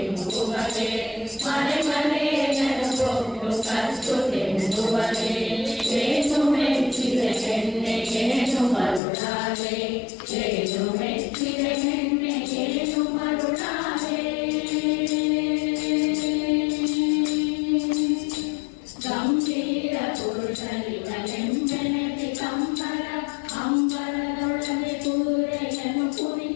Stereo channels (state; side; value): drops out; right; at 9.0 s